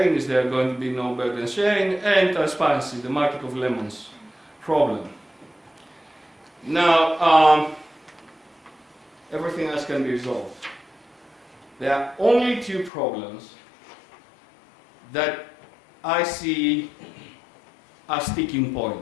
Is there going to be no burden sharing? And transparency, the market of lemons problem. Now, everything else can be resolved. There are only two problems that I see as sticking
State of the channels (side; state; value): right; drops out; at 12.9 s